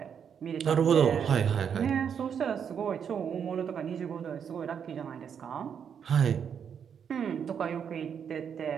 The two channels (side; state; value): left; quieter; 7.6 dB